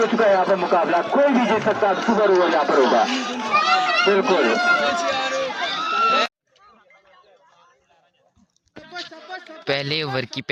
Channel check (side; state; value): both; identical; correlation 1.00